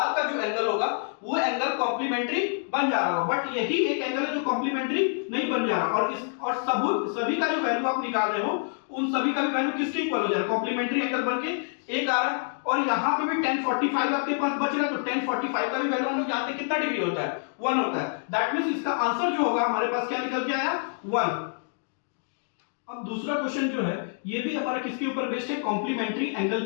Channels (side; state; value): right; silent; 60 dB below the other